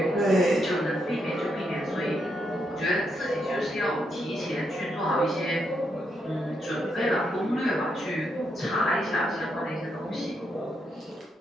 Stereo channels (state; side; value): normal; both; correlation 0.80